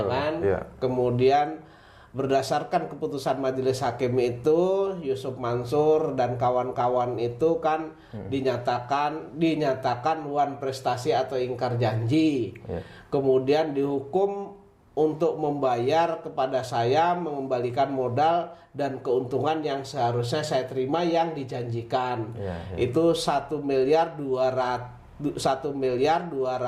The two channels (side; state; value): both; identical; correlation 1.00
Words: kan? Ya. Kemudian berdasarkan keputusan majelis hakim itu, Yusuf Mansur dan kawan-kawan itu kan dinyatakan wan prestasi atau ingkar janji. Ya. Kemudian dihukum untuk membayar kepada saya, mengembalikan modal dan keuntungan yang seharusnya saya terima yang dijanjikan. Ya. Itu 1 miliar 200 juta